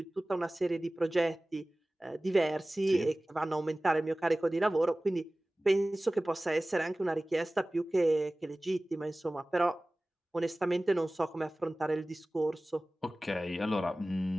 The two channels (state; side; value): normal; both; correlation 0.98